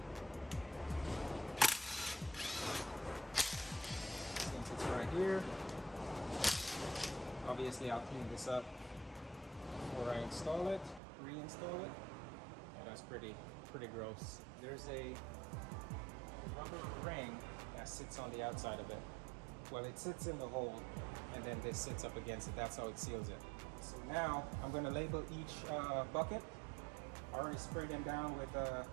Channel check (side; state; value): left; drops out; at 11.0 s